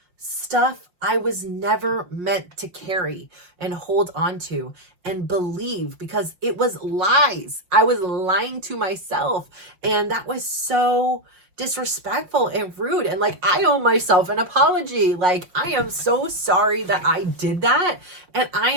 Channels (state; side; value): late; left; 5.8 ms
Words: stuff I was never meant to carry and hold on to and believe, because it was lies. I was lying to myself. And that was so disrespectful and rude. And like, I owe myself an apology. Like, I am so sorry that I did that. And I